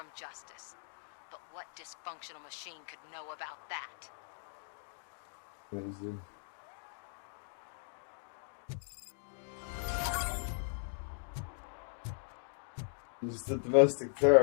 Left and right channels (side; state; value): right; silent; digital silence